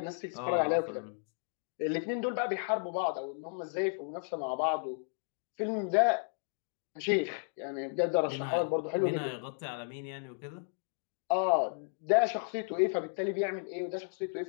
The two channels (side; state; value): right; silent; 55 dB below the other